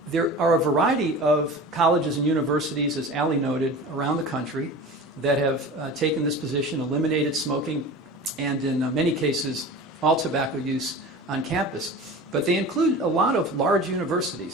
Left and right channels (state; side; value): normal; both; correlation 0.35